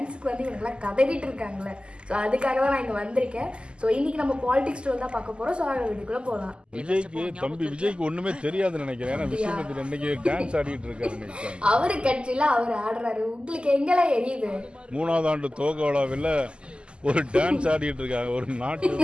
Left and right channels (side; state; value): left; late; 0.051 ms